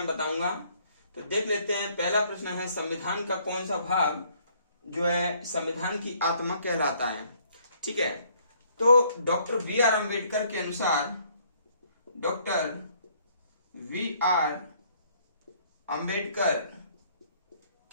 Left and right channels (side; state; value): both; inverted; correlation -0.64